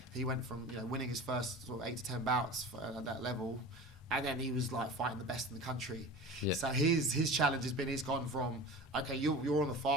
He went from winning his first sort of 8 to 10 bouts at that level. And then he was like fighting the best in the country. So his challenge has been, he's gone from, okay, you're on the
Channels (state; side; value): normal; both; correlation 0.35